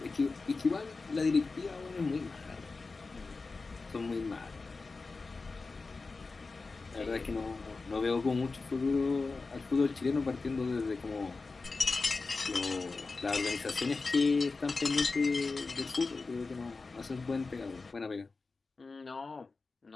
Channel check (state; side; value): quieter; right; 4.0 dB